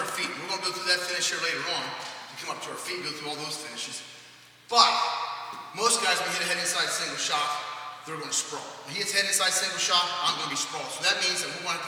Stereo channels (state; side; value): identical; both; correlation 1.00